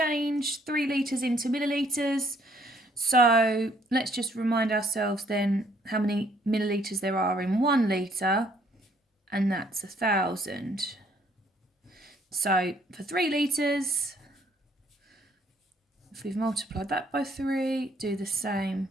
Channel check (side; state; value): both; normal; correlation 0.65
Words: 3 litres into millilitres. So let's just remind ourselves then how many millilitres there are in 1 litre, and that's 1,000. So for 3 litres, if we've multiplied that by 3, do the same,